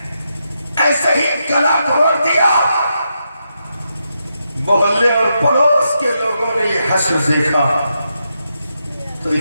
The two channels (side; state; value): both; inverted; correlation -0.83